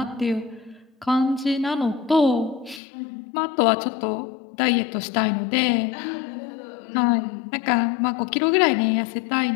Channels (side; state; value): right; drops out; at 2.8 s